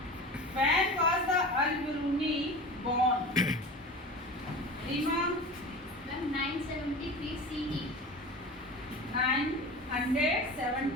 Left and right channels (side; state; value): both; normal; correlation 0.33